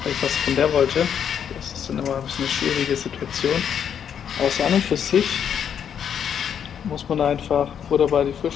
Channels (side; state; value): right; quieter; 8.3 dB